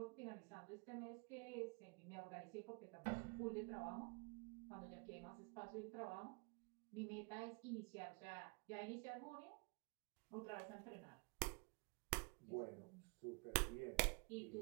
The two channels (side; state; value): left; quieter; 32.8 dB